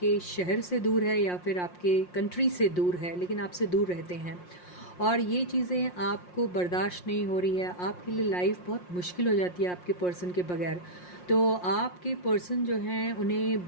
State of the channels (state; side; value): late; right; 5.6 ms